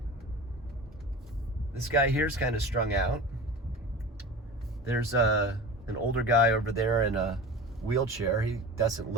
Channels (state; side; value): normal; both; correlation 0.34